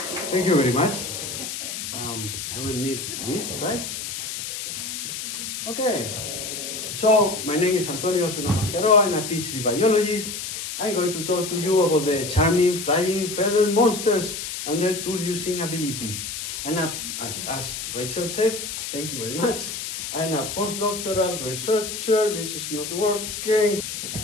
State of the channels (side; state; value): left; noise; hiss, 6 dB below the sound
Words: Thank you very much. I will need this, right? Okay. So, my name is Antonio Osuna Mascaró. I'm a PhD biologist. I'm going to talk to you about the charming flying feather monsters and their tool-using abilities. And as Rachel said, thank you very much. I'm a postdoctoral researcher. This is not working.